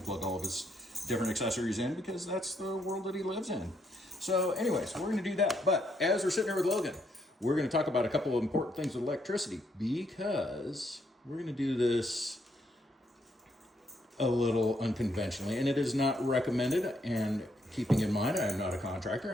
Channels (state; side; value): normal; both; correlation 0.74